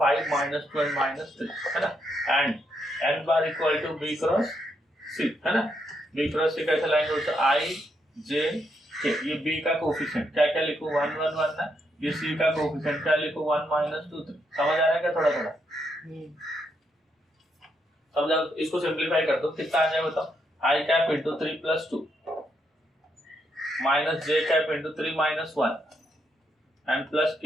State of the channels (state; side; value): normal; both; correlation 0.78